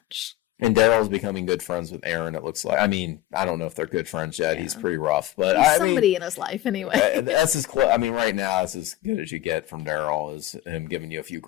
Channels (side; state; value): right; quieter; 15.3 dB